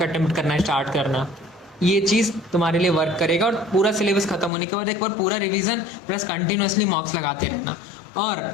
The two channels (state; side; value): drops out; right; at 4.5 s